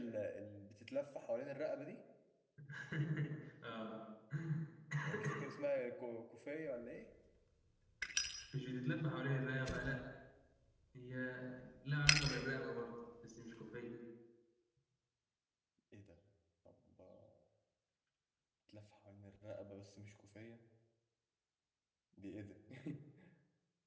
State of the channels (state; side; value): identical; both; correlation 1.00